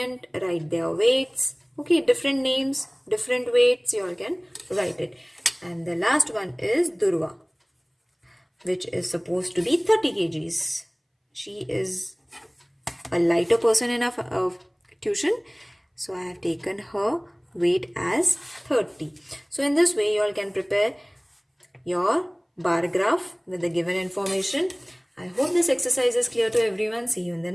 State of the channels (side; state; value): both; identical; correlation 1.00